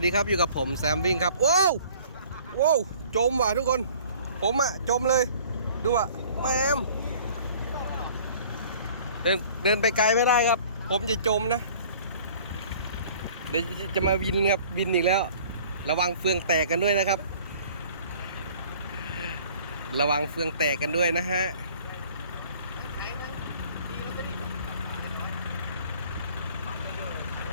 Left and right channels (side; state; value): both; inverted; correlation -0.51